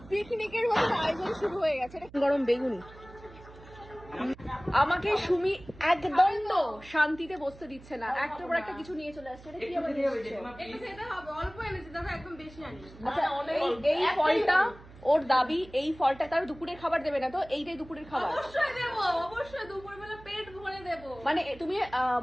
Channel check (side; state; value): right; noise; hum, 20 dB below the sound